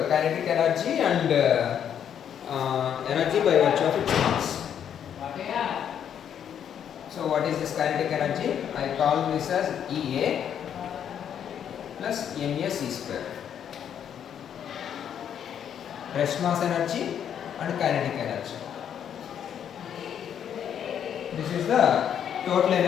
energy and energy by virtue of its mass. So what is this kinetic energy? I call this as EA plus NAC square. Rest mass energy and kinetic energy. This is the total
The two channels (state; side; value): quieter; right; 8.9 dB